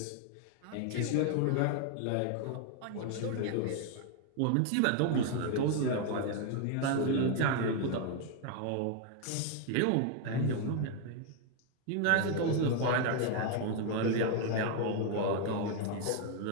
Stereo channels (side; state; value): both; different; correlation 0.00